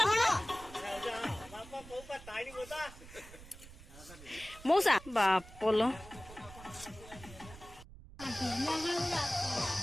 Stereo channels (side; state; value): right; noise; rumble, 17 dB below the sound